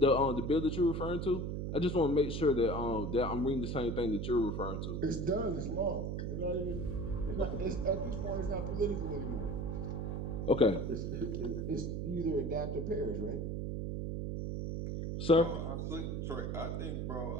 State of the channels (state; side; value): noise; right; hum, 2 dB below the sound